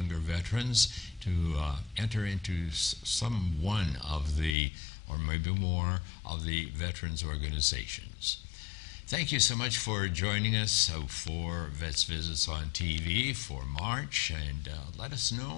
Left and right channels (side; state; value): right; drops out; at 4.5 s